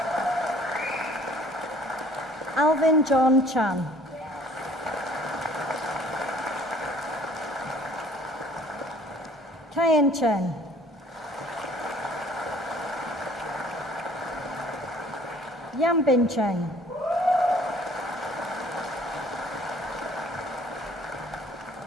Alvin John Chan. Kayan Chen. Yambin Cheng.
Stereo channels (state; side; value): normal; both; correlation 0.55